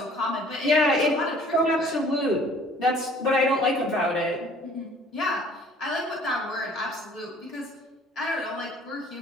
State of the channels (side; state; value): both; normal; correlation 0.53